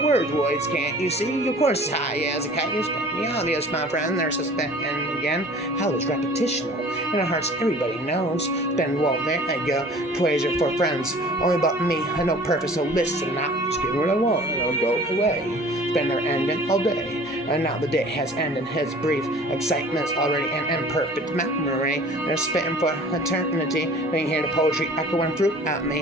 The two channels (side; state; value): both; normal; correlation 0.47